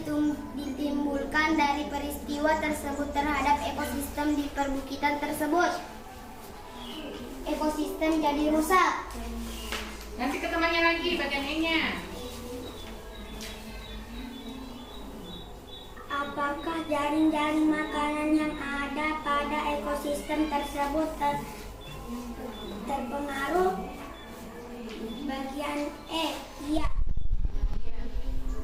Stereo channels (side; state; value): both; identical; correlation 1.00